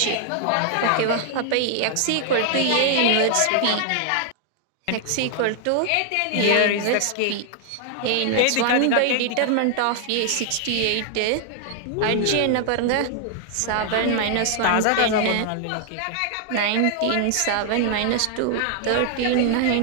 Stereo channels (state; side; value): different; both; correlation 0.00